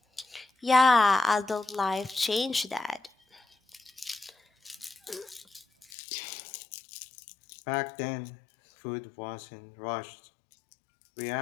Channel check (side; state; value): right; drops out; at 5.9 s